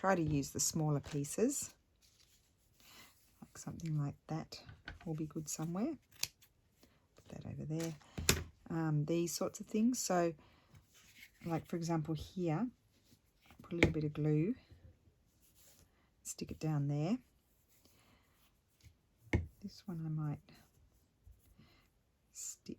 to use the smaller pieces. Like something like that will be good somewhere. Put that over there. These sorts of things. So like for example here, put a little bit of glue. Stick it down there. This one I might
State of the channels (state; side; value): identical; both; correlation 1.00